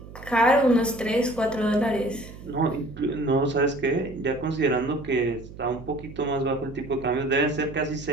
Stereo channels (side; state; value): right; noise; hum, 16 dB below the sound